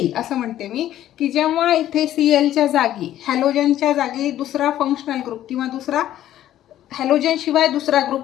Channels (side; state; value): right; quieter; 12.5 dB